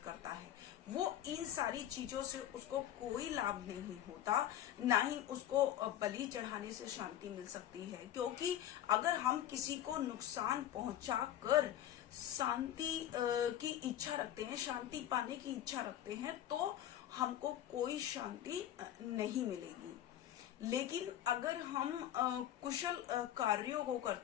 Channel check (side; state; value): right; quieter; 11.7 dB